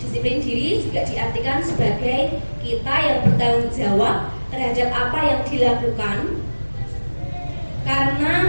Disiplin diri juga diartikan sebagai kita yang bertanggung jawab terhadap apa yang dilakukan karena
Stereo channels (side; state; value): both; inverted; correlation -1.00